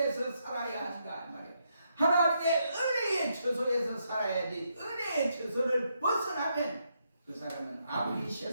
살아야 한다 말이에요. 하나님의 은혜의 처소에서 살아야지 은혜의 처소를 벗어나면 그 사람은 아무리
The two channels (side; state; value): both; inverted; correlation -0.79